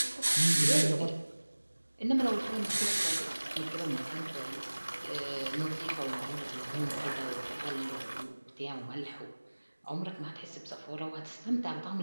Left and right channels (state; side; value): inverted; both; correlation -1.00